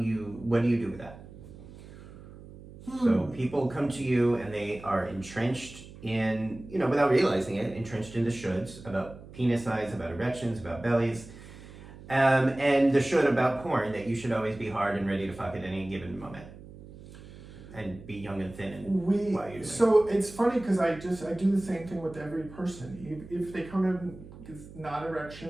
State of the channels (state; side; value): noise; right; hum, 17 dB below the sound